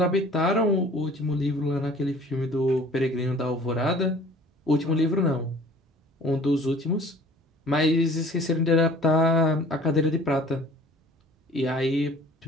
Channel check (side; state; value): both; normal; correlation 0.49